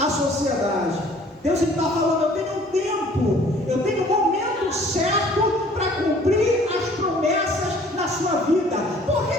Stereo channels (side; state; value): both; normal; correlation 0.54